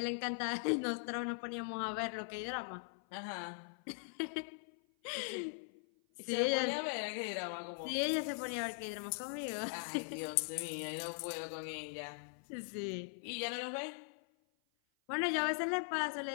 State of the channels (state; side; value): silent; right; 51 dB below the other